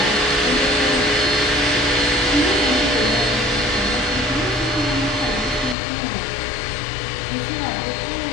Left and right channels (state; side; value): drops out; right; at 5.8 s